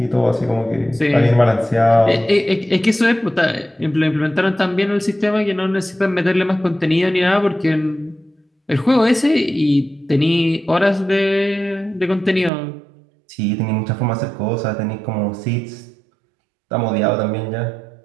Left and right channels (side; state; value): left; drops out; at 12.5 s